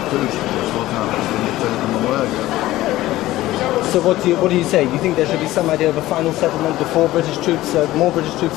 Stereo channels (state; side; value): quieter; right; 16.3 dB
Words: It's what happens when you take them away again. So what do you say? Do you think there should be some idea of a final settlement before British troops, more British troops